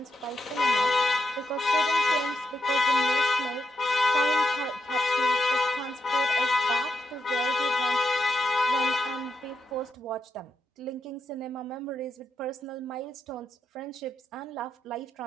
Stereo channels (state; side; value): normal; both; correlation 0.83